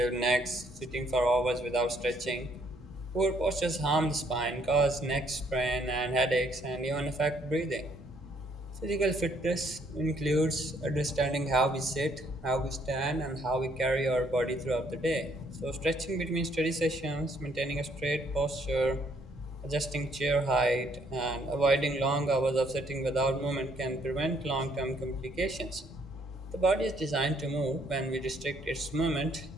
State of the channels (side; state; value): both; normal; correlation 0.67